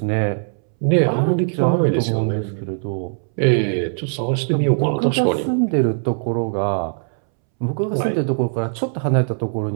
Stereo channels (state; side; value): silent; left; 66 dB below the other